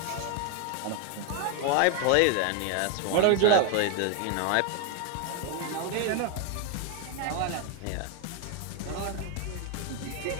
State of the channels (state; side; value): different; both; correlation 0.01